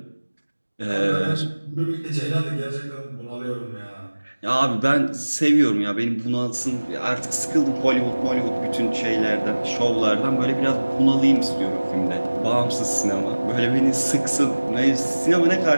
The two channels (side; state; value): both; inverted; correlation -1.00